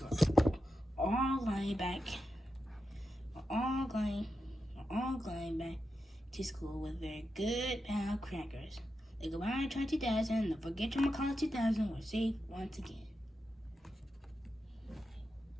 were all going back to school with their good pal Crackers. The goodbye try 2000 and the forget your McCall 2000 were safe once again.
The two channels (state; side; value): normal; both; correlation 0.88